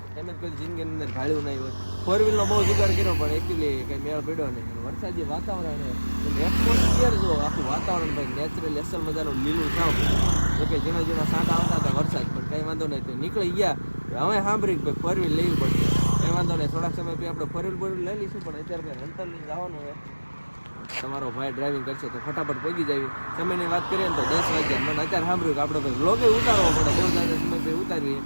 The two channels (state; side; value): inverted; both; correlation -1.00